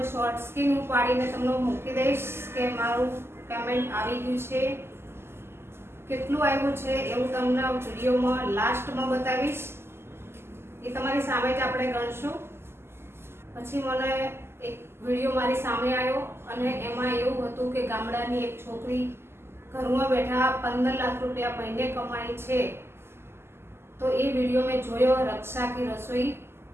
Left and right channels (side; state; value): left; late; 0.12 ms